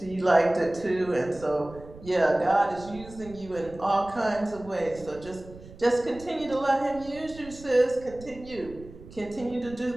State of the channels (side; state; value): right; noise; rumble, 18 dB below the sound